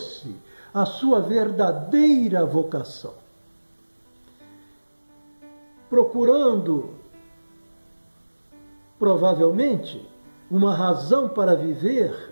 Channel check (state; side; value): inverted; both; correlation -1.00